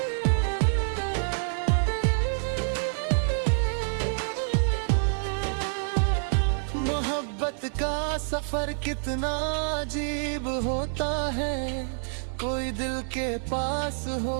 मोहब्बत का सफर कितना अजीब होता है, कोई दिल के पास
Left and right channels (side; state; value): left; silent; 60 dB below the other